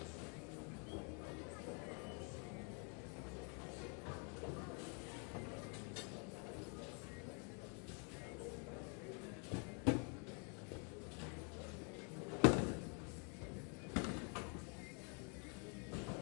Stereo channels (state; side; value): quieter; right; 37.4 dB